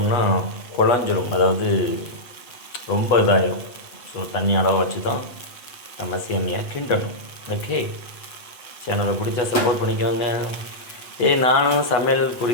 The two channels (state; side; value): late; right; 8.2 ms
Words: குழஞ்சிரும், அதாவது ரொம்ப இதாகிடும். ஸோ தண்ணி அளவை வச்சு தான் நம்ம சேமியா கிண்டணும். ஓகே, சேனலை பிடிச்சா சப்போர்ட் பண்ணிக்கோங்க. நானும் சமையல்